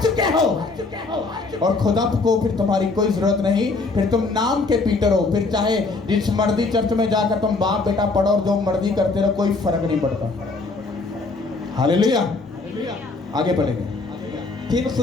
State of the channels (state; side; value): quieter; right; 3.8 dB